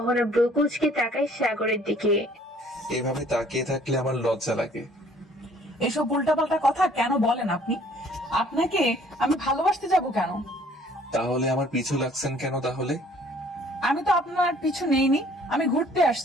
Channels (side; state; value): both; normal; correlation 0.57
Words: ব্রু কুচকে তাকায় সাগরের দিকে। এভাবে তাকিয়ে থাকলে আমার লজ্জা লাগে। এসব উল্টাপাল্টা কথা কেন বলেন আপনি? আপনাকে আমি ভালোবাসতে যাব কেন? তাহলে আমার পিছু লাগছেন কেন তাহলে? আমি তো আপনার পিছু নেইনি, আমি ঘুরতে